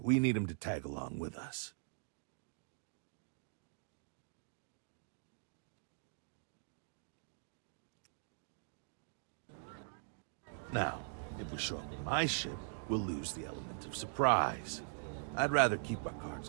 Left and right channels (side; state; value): left; silent; digital silence